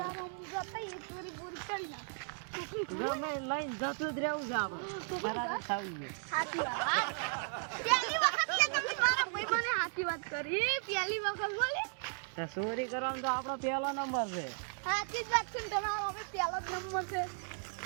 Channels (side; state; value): left; silent; 54 dB below the other